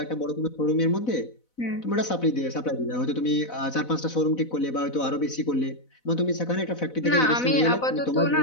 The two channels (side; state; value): right; late; 4.0 ms